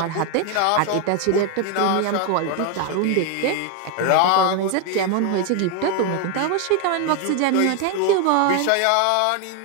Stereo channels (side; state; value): both; different; correlation 0.01